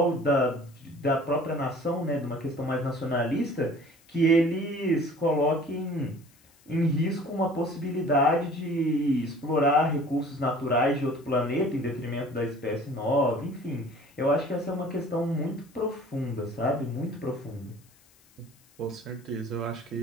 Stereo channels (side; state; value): left; noise; hiss, 30 dB below the sound